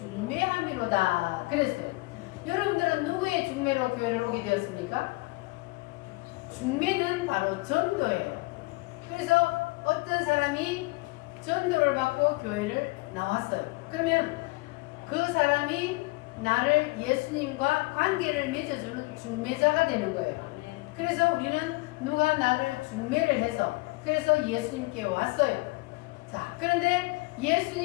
그랬어요. 여러분들은 누구의 중매로 교회를 오게 되었습니까? 중매는 바로 전도예요. 그래서 어떤 사람이 전도를 받고 교회를 나왔어요. 그러면 그 사람이 나를 예수님과 관계를 맺어주는 중매자가 되는 거예요. 그래서 우리는 누가 나를 중매를 해서 그래서 예수님께 왔어요. 자, 그런데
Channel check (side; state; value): right; quieter; 24.4 dB